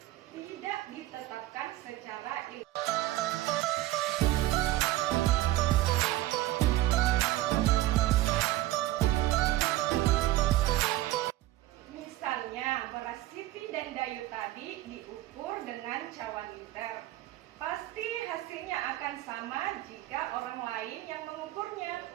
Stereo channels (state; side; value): quieter; left; 15.8 dB